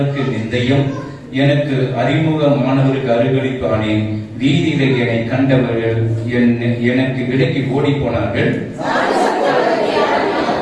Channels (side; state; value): both; identical; correlation 1.00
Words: நிந்தையும் எனக்கு அறிமுகமானவருக்கு அருகழிப்பானேன். வீதியில என்னை கண்டவர்கள் எனக்கு விலக்கி ஓடி போனார்கள்.